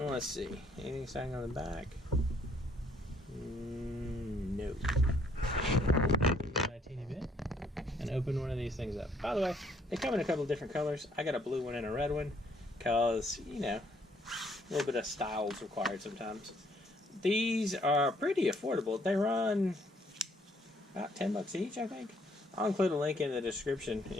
let's see. Anything saying on the back? No. A teeny bit. And open one of these things up. By the way, they come in a couple of different colors. I got a blue one and a red one because, you know, a little bit of style is required sometimes. These are pretty affordable. They run about 10 bucks each, I think. I'll include a link in the description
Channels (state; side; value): normal; both; correlation 0.66